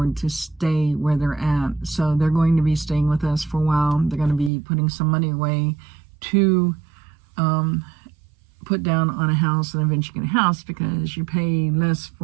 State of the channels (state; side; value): drops out; left; at 4.5 s